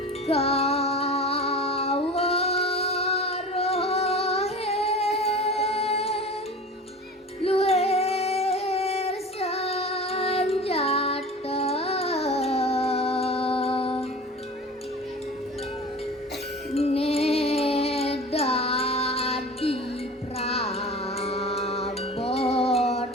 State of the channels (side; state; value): both; normal; correlation 0.36